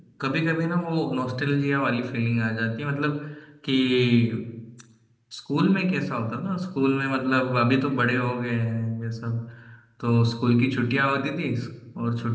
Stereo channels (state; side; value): identical; both; correlation 1.00